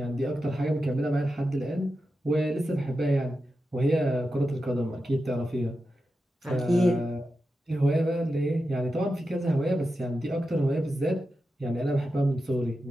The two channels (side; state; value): both; normal; correlation 0.90